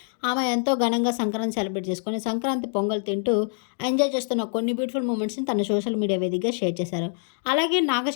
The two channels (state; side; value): silent; right; 62 dB below the other